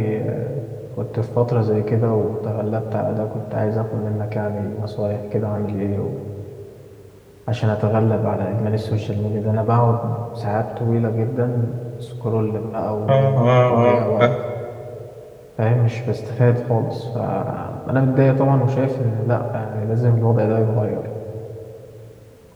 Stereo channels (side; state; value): both; identical; correlation 1.00